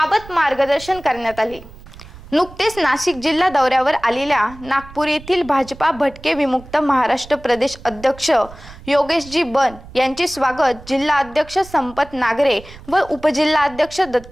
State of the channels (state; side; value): noise; right; rumble, 19 dB below the sound